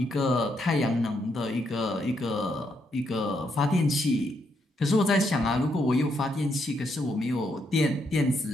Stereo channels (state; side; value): normal; both; correlation 0.77